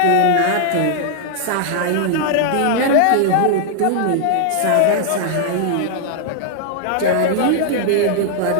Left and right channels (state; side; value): different; both; correlation -0.01